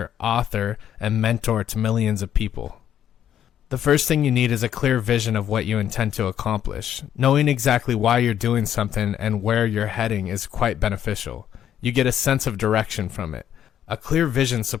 author, and mentor to millions of people. The first thing you need is a clear vision of what you intend to accomplish. Knowing exactly why you're doing something and where you're heading is quite beneficial. You get a sense of direction from it. A clear vision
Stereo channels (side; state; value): right; quieter; 10.2 dB